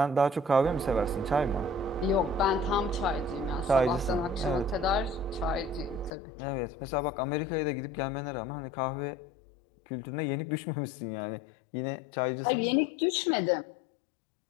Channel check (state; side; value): drops out; right; at 6.1 s